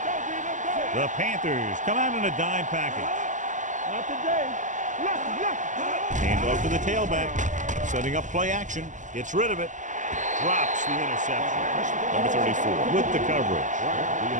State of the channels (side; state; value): left; late; 0.37 ms